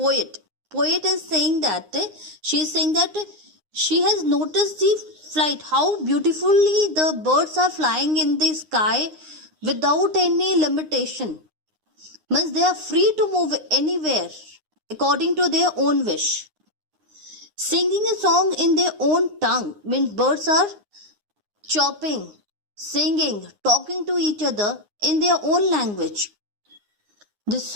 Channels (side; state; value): left; late; 9.7 ms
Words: Poet is saying that she is saying that she has noticed the flight, how beautifully the birds are flying in the sky without any limitation. Means they are free to move anywhere according to their own wish. Singing a song in their own tongue means birds are chirping, singing, talking to each other in their own language. The